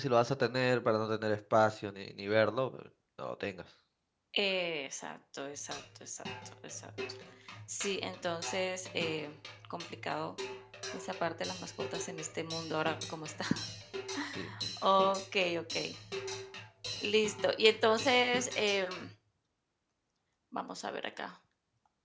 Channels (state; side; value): identical; both; correlation 1.00